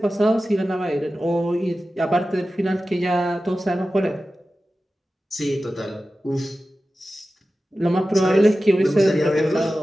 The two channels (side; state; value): both; normal; correlation 0.94